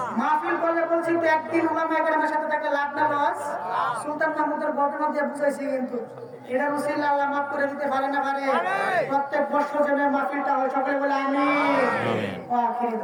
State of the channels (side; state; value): both; identical; correlation 1.00